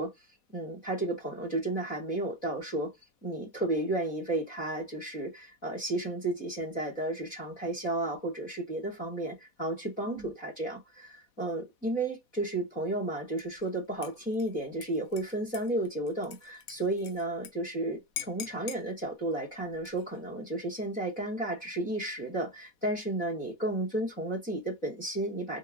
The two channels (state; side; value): late; right; 4.1 ms